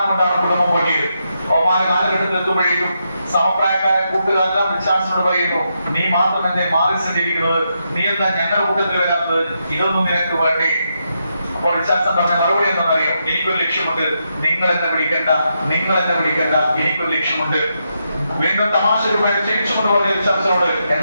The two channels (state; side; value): inverted; both; correlation -0.83